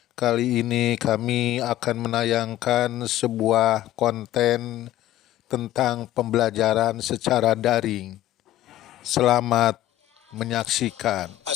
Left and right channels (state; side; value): quieter; right; 14.1 dB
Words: Kali ini kami akan menayangkan sebuah konten tentang pembelajaran secara daring. Selamat menyaksikan.